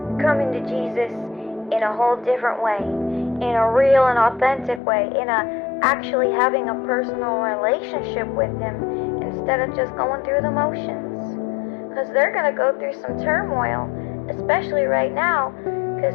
coming to Jesus in a whole different way, in a real and authentic way, in a actually having a personal relationship with Him instead of just going through the motions. Because they're going to go through some turmoil, especially right now,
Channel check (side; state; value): right; drops out; at 4.8 s